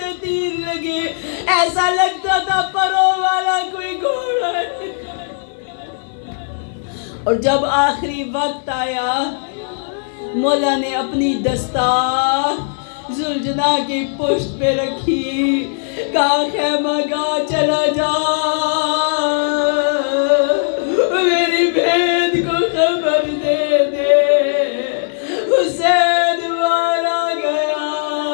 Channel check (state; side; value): silent; right; 56 dB below the other